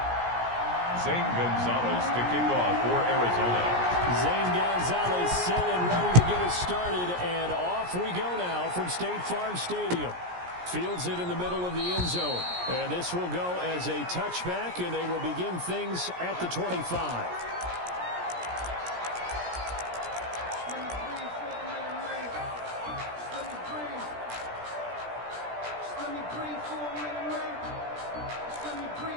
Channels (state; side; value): late; left; 17 ms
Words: Zane Gonzalez to kick off for Arizona. Zane Gonzalez set and ready to get us started, and off we go now from State Farm Stadium. Fields it in the middle of the end zone, and this will go as a touchback, and they will begin things at the 25.